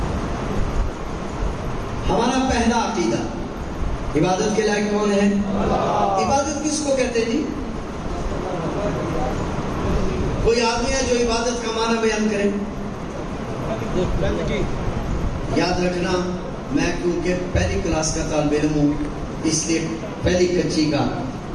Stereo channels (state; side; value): identical; both; correlation 1.00